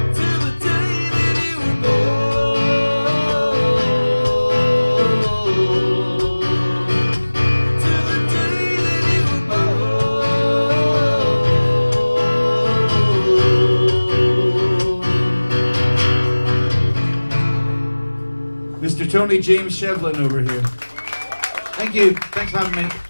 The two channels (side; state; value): both; inverted; correlation -1.00